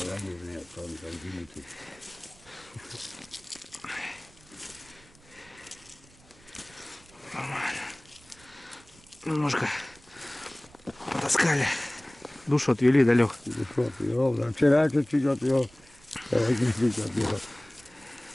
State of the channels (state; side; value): noise; right; rumble, 26 dB below the sound